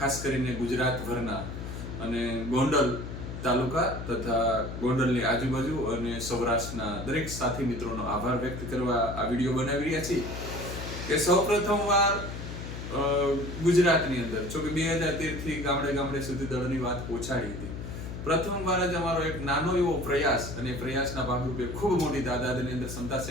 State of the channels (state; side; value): noise; left; hum, 8 dB below the sound